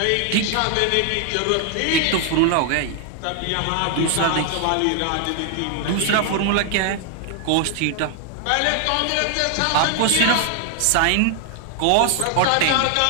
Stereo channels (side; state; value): both; different; correlation 0.00